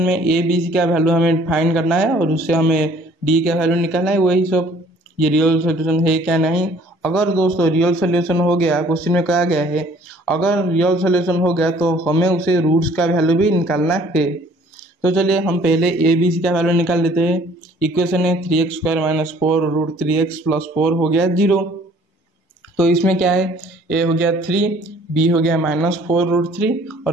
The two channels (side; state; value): both; normal; correlation 0.56